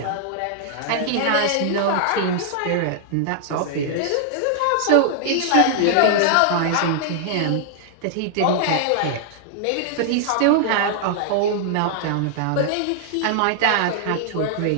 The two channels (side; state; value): both; different; correlation -0.01